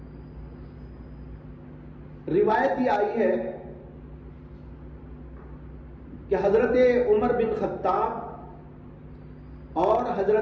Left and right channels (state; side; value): identical; both; correlation 1.00